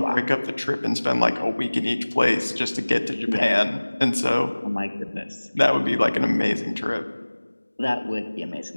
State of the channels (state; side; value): inverted; both; correlation -1.00